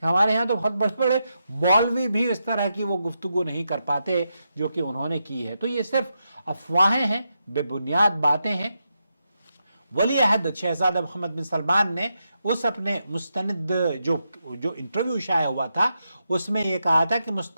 کہ ہمارے ہاں تو بہت بڑے بڑے مولوی بھی اس طرح کی وہ گفتگو نہیں کر پاتے جو کہ انہوں نے کی ہے۔ تو یہ صرف افواہیں ہیں، بے بنیاد باتیں ہیں۔ ولی عہد شہزادہ محمد بن سلمان نے اس اپنے مستند جو انٹرویو شائع ہوا تھا اس میں یہ کہا تھا کہ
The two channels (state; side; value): inverted; both; correlation -0.85